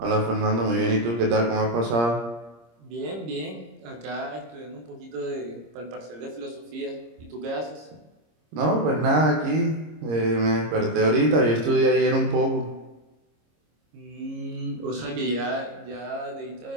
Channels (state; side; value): late; left; 26 ms